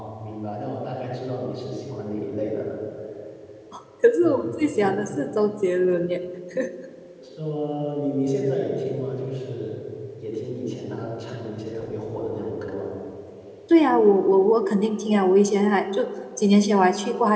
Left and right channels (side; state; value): both; identical; correlation 1.00